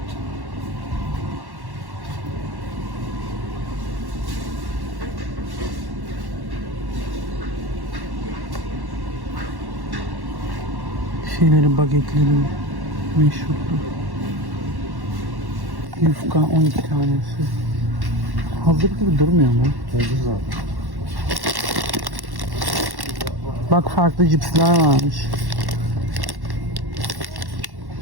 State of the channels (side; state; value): left; late; 1.1 ms